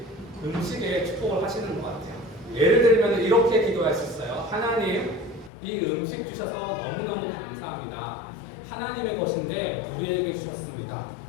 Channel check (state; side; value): drops out; right; at 5.5 s